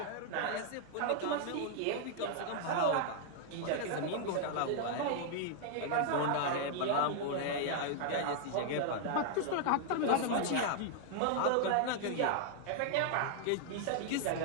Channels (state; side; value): different; both; correlation 0.00